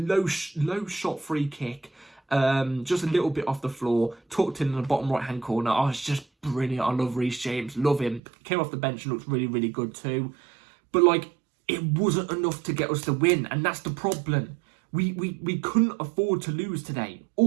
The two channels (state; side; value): drops out; left; at 8.2 s